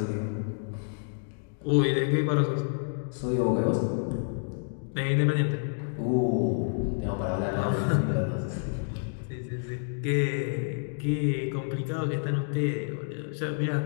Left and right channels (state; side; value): silent; right; digital silence